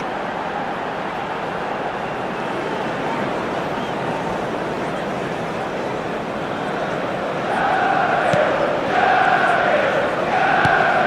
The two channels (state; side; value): identical; both; correlation 1.00